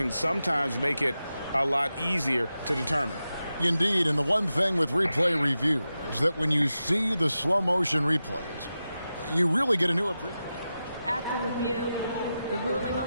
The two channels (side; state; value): both; inverted; correlation -0.91